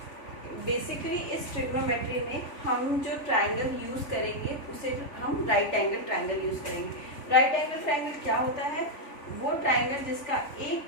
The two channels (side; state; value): right; late; 3.5 ms